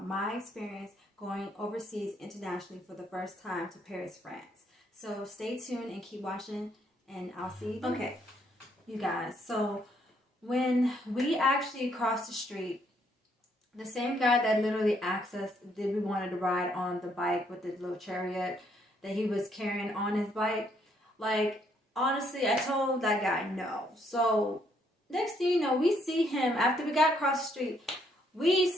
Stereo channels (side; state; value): both; normal; correlation 0.71